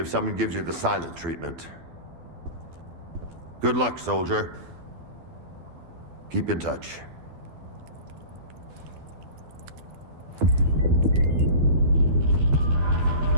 someone gives you the silent treatment. Good luck, soldier. Keep in touch.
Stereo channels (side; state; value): left; late; 12 ms